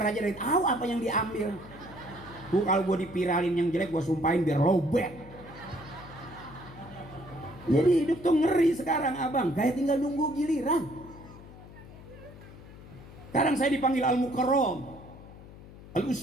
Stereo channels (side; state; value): left; noise; hum, 18 dB below the sound